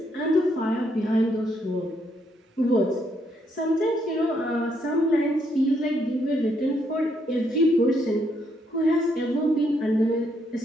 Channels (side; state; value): both; normal; correlation 0.74